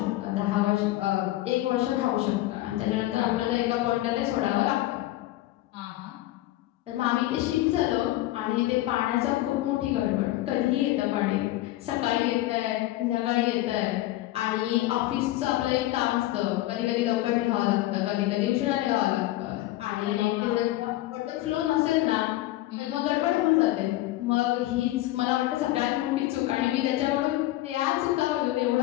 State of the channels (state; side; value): quieter; right; 16.3 dB